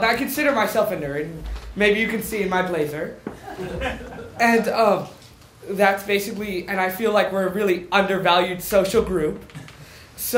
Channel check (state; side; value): identical; both; correlation 1.00